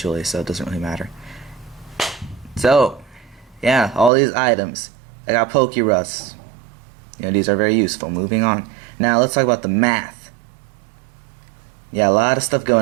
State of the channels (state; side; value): drops out; left; at 4.1 s